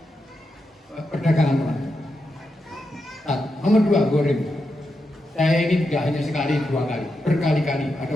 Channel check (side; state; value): both; normal; correlation 0.86